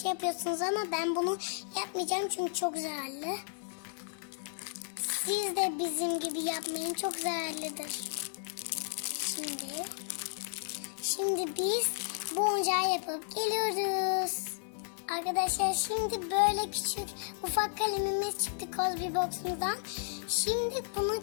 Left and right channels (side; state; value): right; silent; digital silence